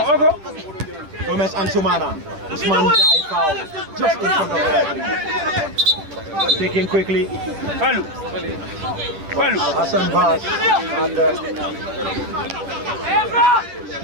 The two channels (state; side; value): late; left; 10 ms